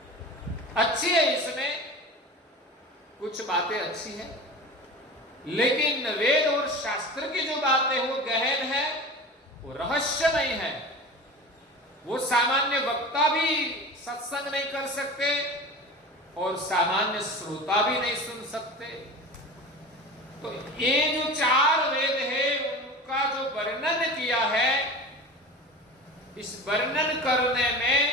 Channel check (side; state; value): both; normal; correlation 0.33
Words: अच्छी है, इसमें कुछ बातें अच्छी है, लेकिन वेद और शास्त्र की जो बातें वो गहन है, वो रहस्यमय है। वो सामान्य वक्ता भी सत्संग नहीं कर सकते और सामान्य श्रोता भी नहीं सुन सकते। तो ये जो चार वेद है उनका जो वर्णन किया है, इस वर्णन करने में